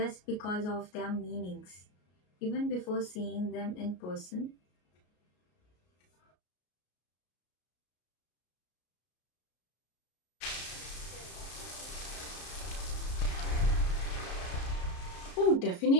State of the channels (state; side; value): late; right; 33 ms